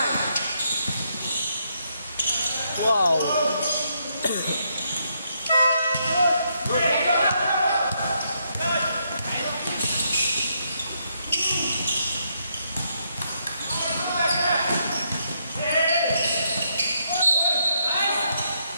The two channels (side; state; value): both; inverted; correlation -0.77